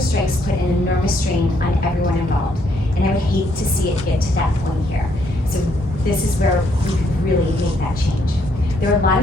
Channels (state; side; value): normal; both; correlation 0.71